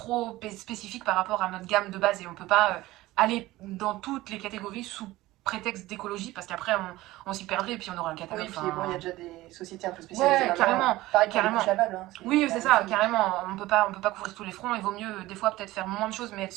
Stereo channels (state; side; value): quieter; left; 17.8 dB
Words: spécifique par rapport à notre gamme de base et on peut pas aller dans toutes les catégories sous prétexte d'écologie parce qu'après on s'y perdrait et puis on aura un catalogue. Oui, puis bon, il y a déjà des sociétés un peu spécialisées. Ouais, carrément. Pareil pour les couches lavables. Hein, oui, c'est ça, carrément. On peut pas couvrir tous les fronts. Il vaut mieux des fois peut-être faire moins de choses mais être